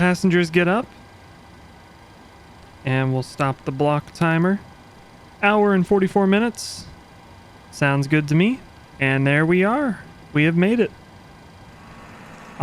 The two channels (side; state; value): both; identical; correlation 1.00